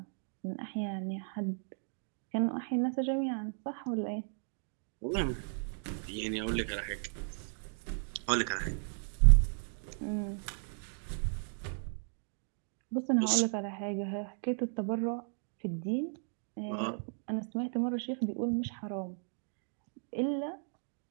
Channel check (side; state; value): left; silent; 54 dB below the other